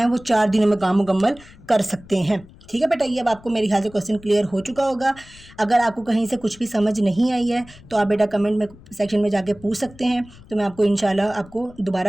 वो 4 दिनों में काम मुकम्मल कर सकते हैं, ठीक है बेटा। ये अब आपको मेरे ख्याल से क्वेश्चन क्लियर हो चुका होगा। अगर आपको कहीं से कुछ भी समझ नहीं आई है तो आप बेटा कमेंट में सेक्शन में जाके पूछ सकते हैं, तो मैं आपको इंशाल्लाह आपको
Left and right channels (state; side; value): noise; left; rumble, 22 dB below the sound